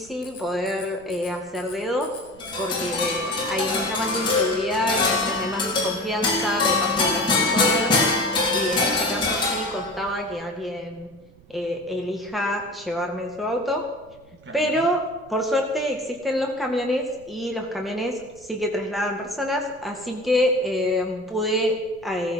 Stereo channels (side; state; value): right; noise; rumble, 26 dB below the sound